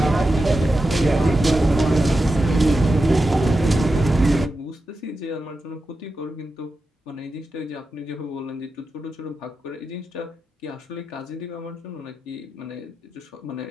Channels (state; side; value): normal; both; correlation 0.90